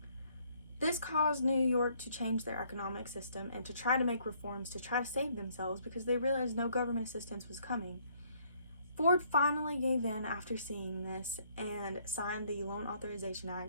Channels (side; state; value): both; inverted; correlation -0.66